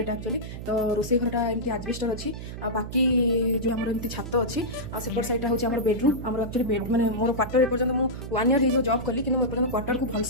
एक्चुअली। तो रोसे घरटा एमती आजबेस्टर अच्छी बाकी जो आम एमती छात अच्छी सेपट साइड हूँ आम बेडरूम आम एक्चुअली बेड मैंने मोर क्वार्टर एपर्तन मुझे 1 ईयर हो जॉब कली कि एपर्तन क्वार्टर को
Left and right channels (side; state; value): right; noise; hum, 9 dB below the sound